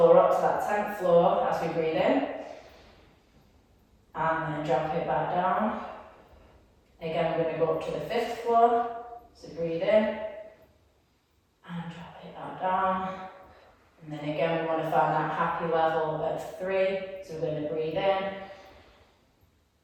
up to that 10th floor as we breathe in, and then drop it back down. Again, we're going to go up to the 5th floor. So breathe in. And drop it back down. And then again, we want to find that happy level of 3. So we're going to breathe in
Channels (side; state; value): both; identical; correlation 1.00